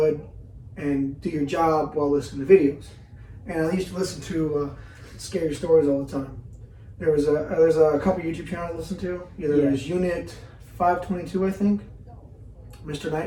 and do your job while listening to videos. And I used to listen to scary stories all the time. There's a couple YouTube channels I listen to. Either there's Unit 522, I think, Mr.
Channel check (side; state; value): both; identical; correlation 1.00